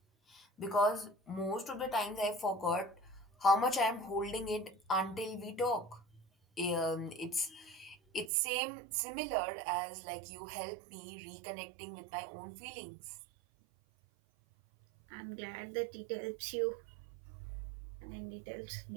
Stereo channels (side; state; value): left; drops out; at 8.3 s